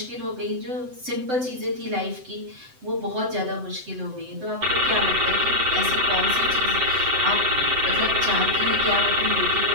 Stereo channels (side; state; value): left; late; 7.8 ms